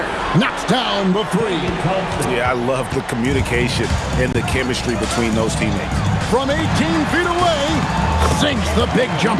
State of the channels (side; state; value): both; identical; correlation 1.00